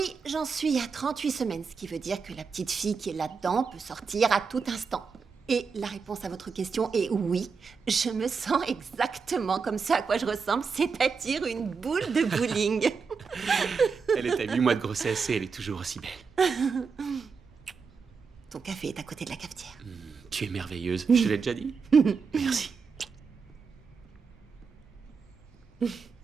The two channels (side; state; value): left; quieter; 5.4 dB